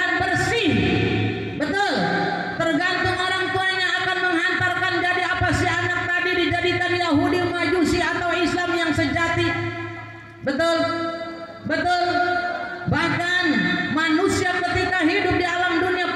bersih. Betul. Tergantung orang tuanya akan menghantarkan jadi apa si anak tadi, dijadikan Yahudi, Majusi atau Islam yang sejati. Betul. Betul. Bahkan manusia ketika hidup di alam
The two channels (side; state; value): both; identical; correlation 1.00